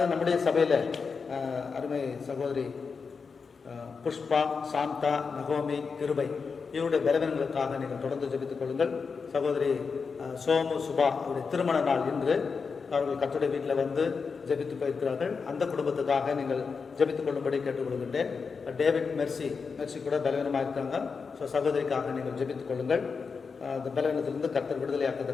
நம்முடைய சபையில் அருமை சகோதரி புஷ்பா, சாந்தா, நகோமி, கிருபை இவருடைய பலவீனங்களுக்காக நீங்கள் தொடர்ந்து ஜெபித்துக் கொள்ளுங்கள். சகோதரி சோமு, சுபா அவருடைய திருமண நாள் இன்று. அவர்கள் கர்த்தருடைய வீட்டில் வந்து ஜெபித்து போயிருக்கிறார்கள். அந்த குடும்பத்துக்காக நீங்கள் ஜெபித்துக் கொள்ளும்படி கேட்டுக்கொள்கின்றேன். டேவிட் மெர்சி கூட பலவீனமாக இருக்காங்க. ஸோ சகோதரிக்காக நீங்கள் ஜெபித்துக் கொள்ளுங்கள். அந்த பலவீனத்திலிருந்து கர்த்தர்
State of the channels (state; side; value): quieter; right; 5.2 dB